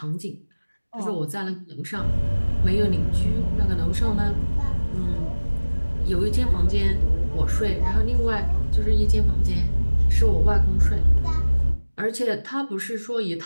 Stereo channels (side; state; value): both; inverted; correlation -1.00